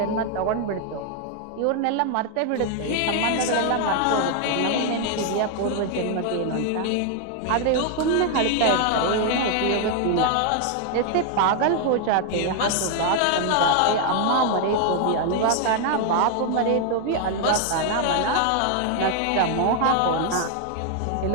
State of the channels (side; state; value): both; different; correlation 0.00